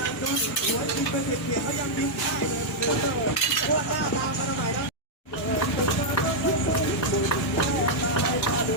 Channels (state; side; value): normal; both; correlation -0.04